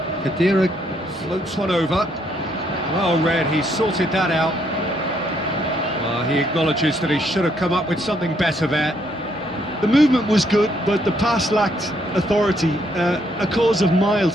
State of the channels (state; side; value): normal; both; correlation 0.71